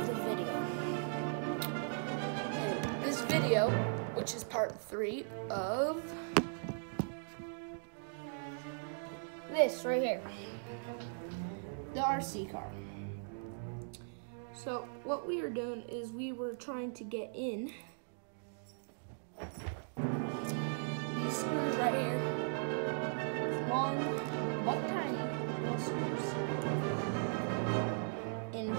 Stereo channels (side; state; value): left; silent; digital silence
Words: the video. And this video, which is part 3 of this right here, the RC car. So what we are doing is we were trying to get in these screws right here, long but tiny little screws,